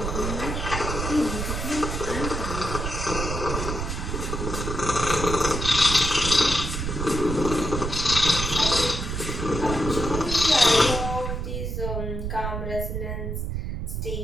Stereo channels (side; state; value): right; noise; rumble, 3 dB below the sound